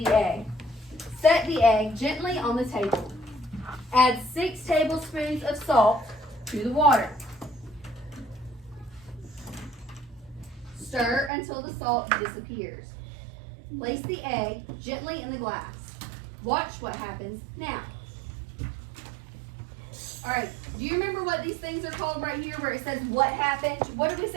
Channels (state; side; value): drops out; left; at 11.3 s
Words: the egg. Set the egg gently on the table. Add 6 tablespoons of salt to the water. Stir until the salt disappears. Place the egg gently in the glass. Watch what happens now. All right, do you remember what these things are called right here where it says what happened? What did we